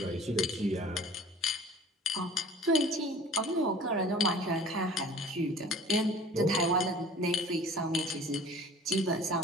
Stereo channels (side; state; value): both; normal; correlation 0.46